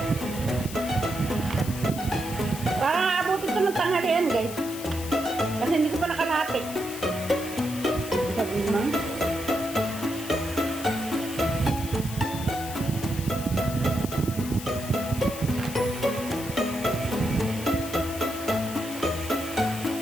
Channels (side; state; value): left; noise; hiss, 11 dB below the sound